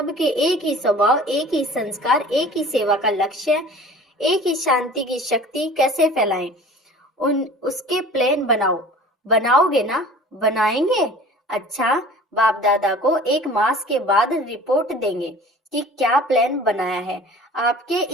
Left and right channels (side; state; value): both; normal; correlation 0.44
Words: एक ही स्वभाव, एक ही संस्कार, एक ही सेवा का लक्ष्य, एक ही शांति की शक्ति कैसे फैलाएं, उसके प्लान बनाओ। बनाओगे ना? बनाएंगे। अच्छा, बाप दादा को 1 मास के बाद रिपोर्ट देंगे कि क्या प्लान बनाया है। आपके